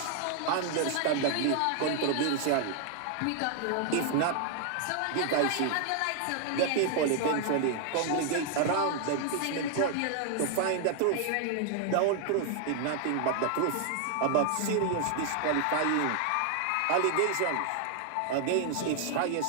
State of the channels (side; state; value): both; different; correlation 0.00